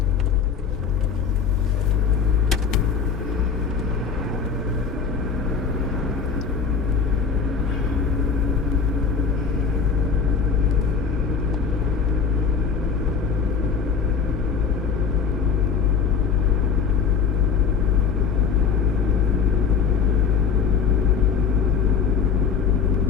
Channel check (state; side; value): quieter; right; 6.1 dB